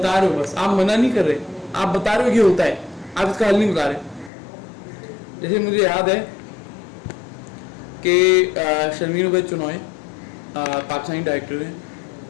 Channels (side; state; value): right; drops out; at 4.3 s